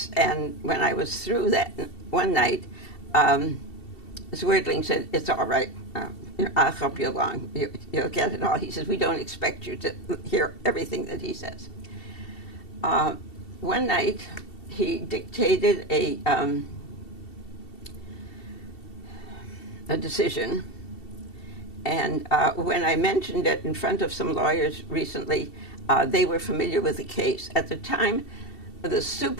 and when I was through that one night, Zwerdling said, "It's all right. I'll help you along. You'll get it all." He says, "We don't expect you to hear everything that he says." One night, he dictated a decision, and when I mentioned it in front of some lawyers recently, they were familiar with the case. At the time, the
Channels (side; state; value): right; late; 2.7 ms